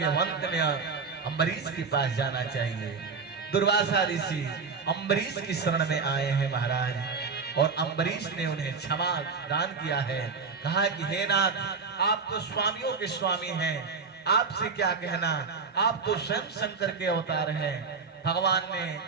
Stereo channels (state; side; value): quieter; left; 5.0 dB